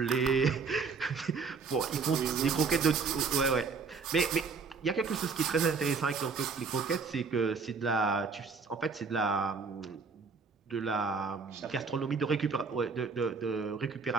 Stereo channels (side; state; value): left; quieter; 4.9 dB